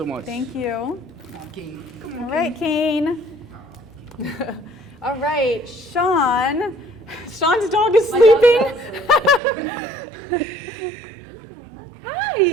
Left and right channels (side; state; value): left; drops out; at 9.4 s